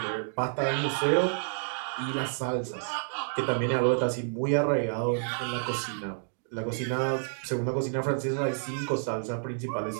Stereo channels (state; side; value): silent; left; digital silence